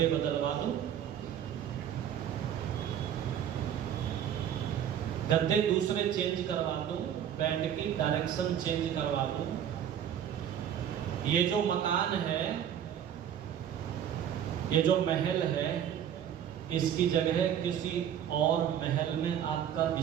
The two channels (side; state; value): left; quieter; 9.6 dB